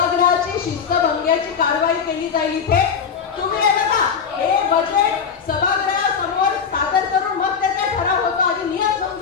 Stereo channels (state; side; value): quieter; right; 6.5 dB